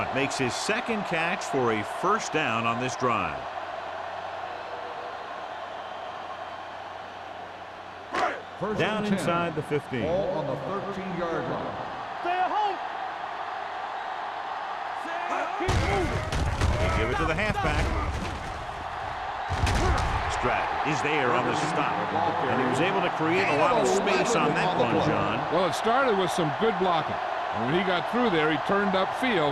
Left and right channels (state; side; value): identical; both; correlation 1.00